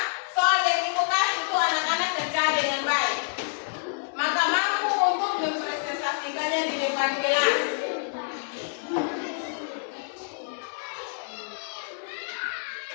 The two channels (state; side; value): silent; right; 60 dB below the other